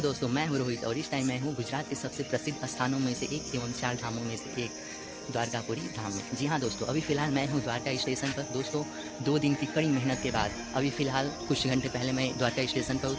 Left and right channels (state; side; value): identical; both; correlation 1.00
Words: मैं हूँ रोहित और इस टाइम मैं हूँ गुजरात के सबसे प्रसिद्ध स्थानों में से एक एवं 4 धामों में से एक द्वारकापुरी धाम में। जी हाँ दोस्तों, अभी फ़िलहाल मैं हूँ द्वारका स्टेशन पर। दोस्तों 2 दिन की कड़ी मेहनत के बाद अभी फ़िलहाल कुछ घंटे पहले मैं द्वारका स्टेशन पर